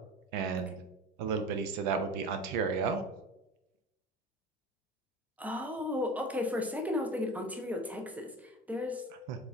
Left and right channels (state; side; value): normal; both; correlation 0.33